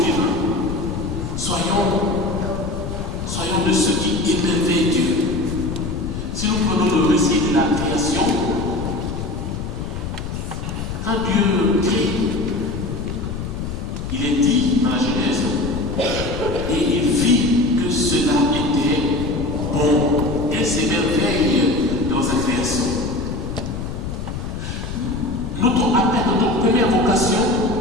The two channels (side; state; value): left; noise; rumble, 6 dB below the sound